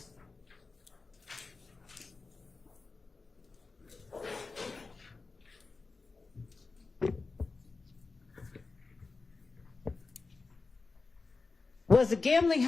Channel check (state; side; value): quieter; right; 4.0 dB